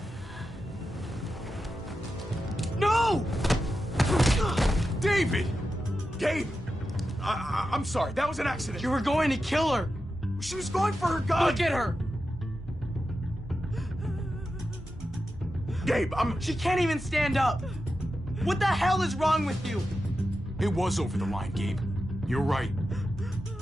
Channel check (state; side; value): normal; both; correlation 0.90